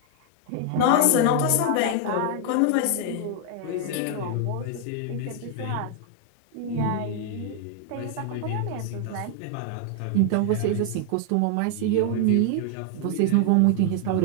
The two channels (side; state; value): both; different; correlation 0.00